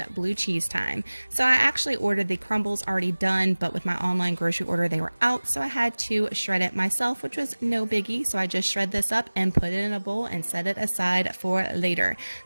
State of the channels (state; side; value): inverted; both; correlation -1.00